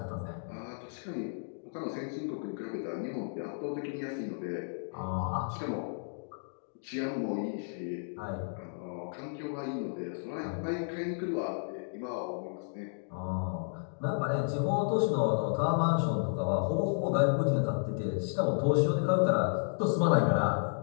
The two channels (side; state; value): right; silent; digital silence